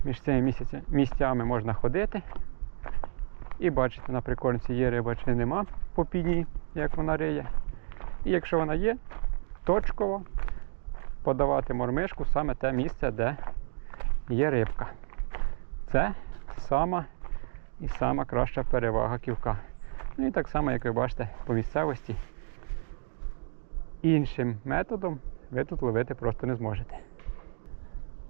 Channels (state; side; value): silent; left; digital silence